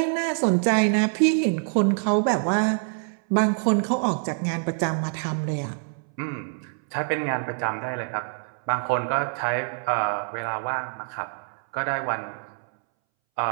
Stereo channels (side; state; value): left; silent; 61 dB below the other